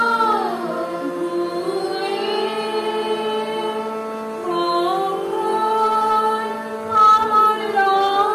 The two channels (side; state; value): both; identical; correlation 1.00